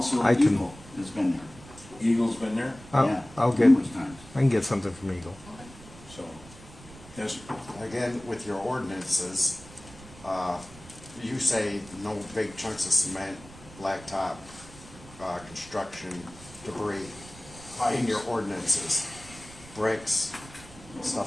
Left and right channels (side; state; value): right; noise; rumble, 19 dB below the sound